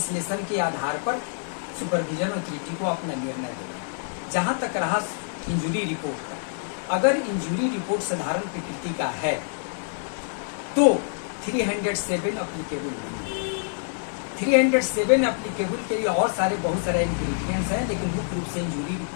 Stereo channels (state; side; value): silent; right; digital silence